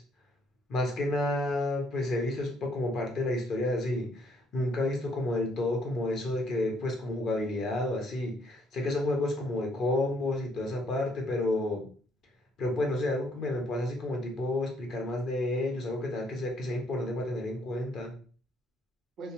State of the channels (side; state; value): both; normal; correlation 0.68